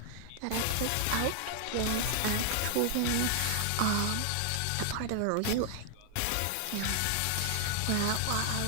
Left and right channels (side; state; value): both; different; correlation 0.00